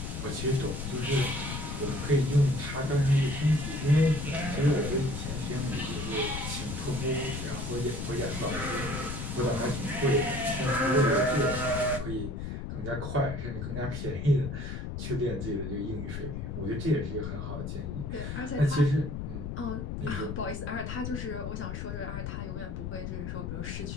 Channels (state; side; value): noise; left; rumble, 5 dB below the sound